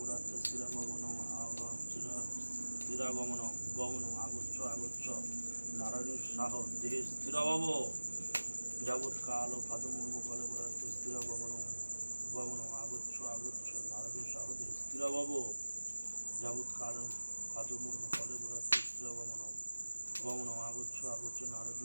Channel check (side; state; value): both; inverted; correlation -1.00